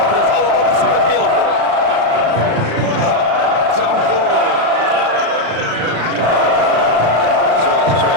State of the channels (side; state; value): left; late; 35 ms